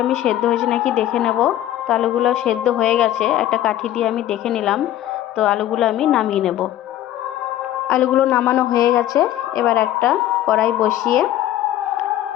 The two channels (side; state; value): right; quieter; 12.9 dB